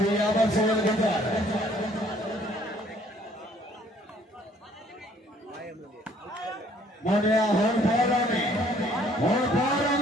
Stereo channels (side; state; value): both; normal; correlation 0.60